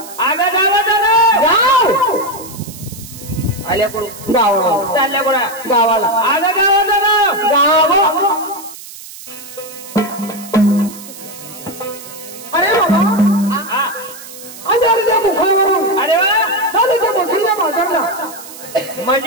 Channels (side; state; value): right; noise; hiss, 15 dB below the sound